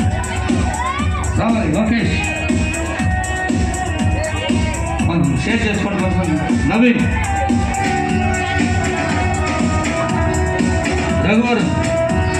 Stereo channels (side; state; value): both; identical; correlation 1.00